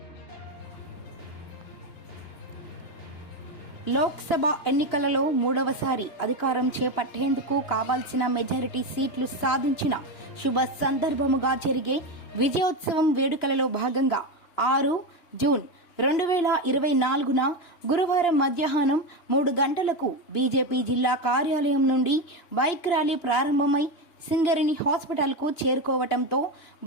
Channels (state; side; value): late; right; 2.9 ms